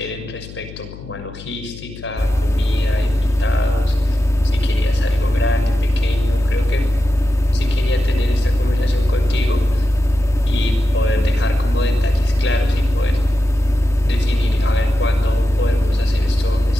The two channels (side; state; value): left; noise; hum, 14 dB below the sound